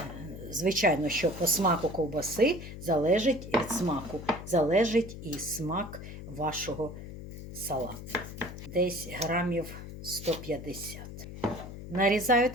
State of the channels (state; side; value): noise; left; hum, 11 dB below the sound